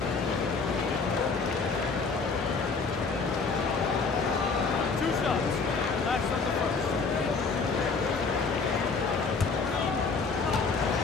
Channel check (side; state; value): right; quieter; 4.6 dB